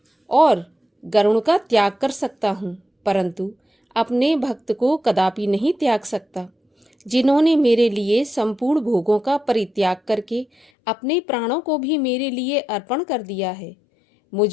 और गरुण का त्याग कर सकता हूँ, परंतु अपने भक्त को कदापि नहीं त्याग सकता। जिन्होंने मेरे लिए संपूर्ण भोगों का परित्याग करके अपने प्राणों को भी मेरे लिए अर्पण कर दिया है।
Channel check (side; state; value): right; drops out; at 10.7 s